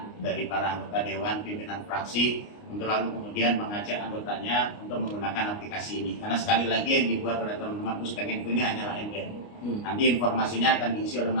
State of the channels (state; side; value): late; right; 29 ms